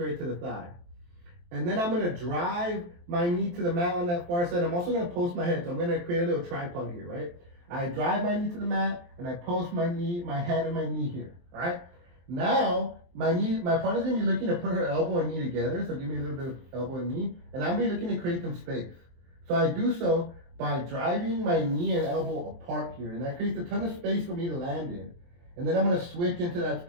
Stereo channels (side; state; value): left; late; 23 ms